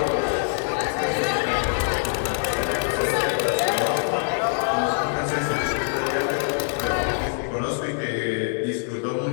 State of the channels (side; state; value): right; silent; digital silence